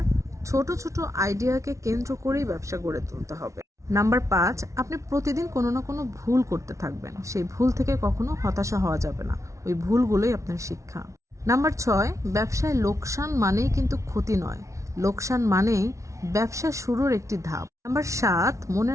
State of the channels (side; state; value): left; late; 0.14 ms